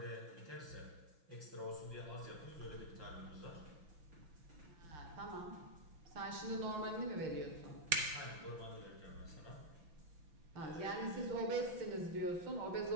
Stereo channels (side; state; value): left; late; 6.0 ms